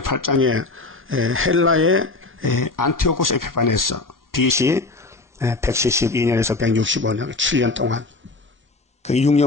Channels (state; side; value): quieter; right; 3.4 dB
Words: 8장에 헬라의 안티오코스 에피파네스 BC 172년에서 165년 7년 동안 그